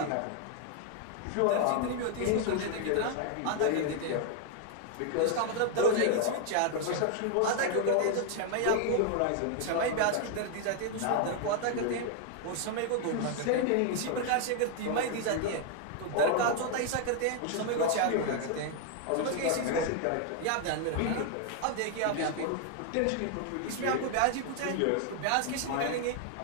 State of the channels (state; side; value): different; both; correlation 0.00